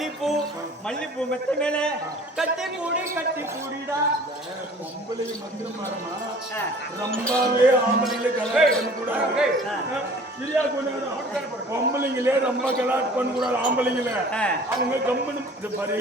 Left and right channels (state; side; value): normal; both; correlation 0.48